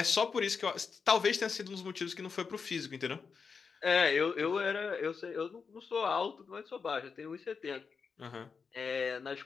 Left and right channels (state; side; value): quieter; right; 5.5 dB